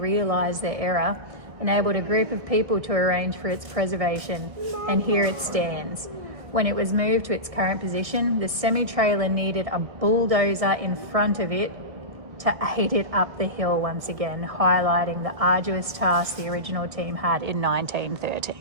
their error enabled a group of people to arrange for its preservation, and here it stands. When it was moved to its current position, the semi-trailer needed a bulldozer in front of it to aid it up the hill once again, highlighting the arduous task the original team had in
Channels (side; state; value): left; late; 1.6 ms